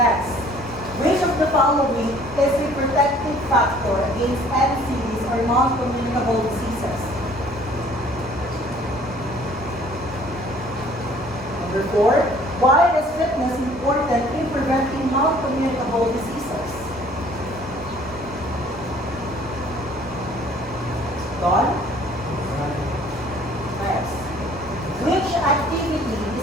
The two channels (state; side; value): normal; both; correlation 0.55